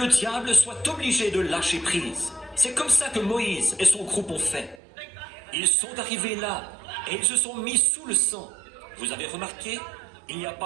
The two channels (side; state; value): left; drops out; at 4.8 s